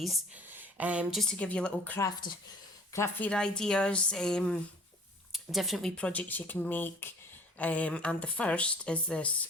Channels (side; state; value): both; normal; correlation 0.50